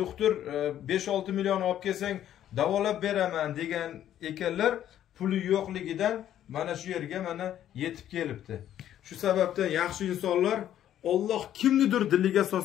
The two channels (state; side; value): quieter; right; 11.3 dB